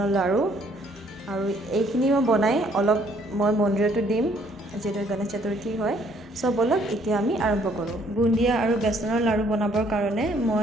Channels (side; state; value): both; normal; correlation 0.64